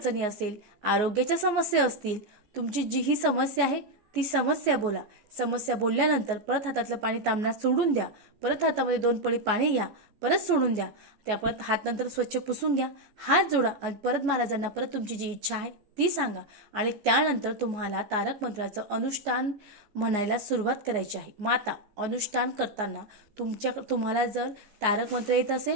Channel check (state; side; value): late; left; 14 ms